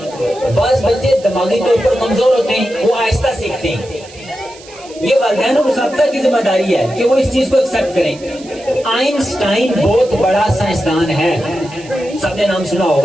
بعض بچے دماغی طور پر کمزور ہوتے ہیں، وہ آہستہ سیکھتے ہیں. یہ والدین اور اساتذہ کی ذمہ داری ہے کہ وہ اس چیز کو ایکسپٹ کریں. آئنسٹائن بہت بڑا سائنسدان ہے، سب نے نام سنا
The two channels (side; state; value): right; noise; hiss, 21 dB below the sound